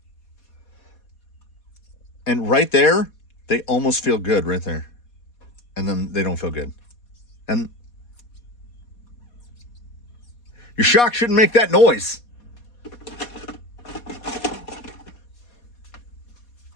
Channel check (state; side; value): late; right; 4.2 ms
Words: And right there, they almost feel good right there. And then they don't feel good. And your shock shouldn't make that noise.